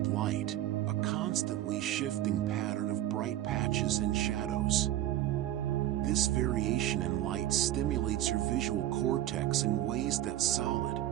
light, a constantly shifting pattern of bright patches and shadows. This variation in light stimulates your visual cortex in ways that solid,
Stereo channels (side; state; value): left; quieter; 13.3 dB